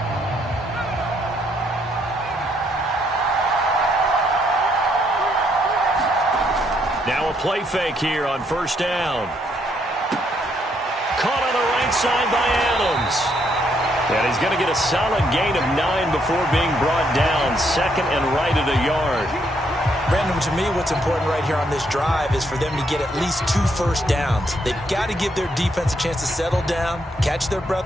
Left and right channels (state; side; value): normal; both; correlation 0.73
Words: Now a play fake here on first down. Caught on the right side by Adams. And he's going to get a solid gain of 9 before being brought down. 2nd and right at a yard. Brandon, to me, what's important right here on this drive is for them to get at least 2 first downs. They've got to give their defense a chance to settle down, catch their